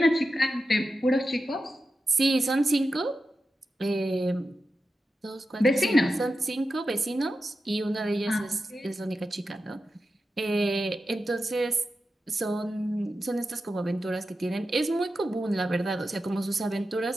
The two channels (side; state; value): both; normal; correlation 0.91